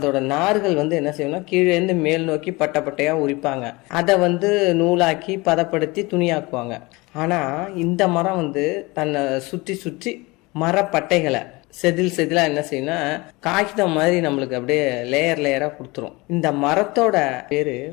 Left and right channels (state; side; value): quieter; right; 23.8 dB